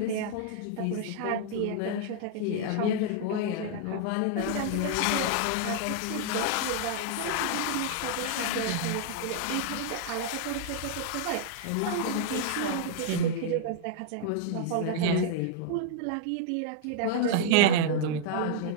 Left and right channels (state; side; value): different; both; correlation -0.01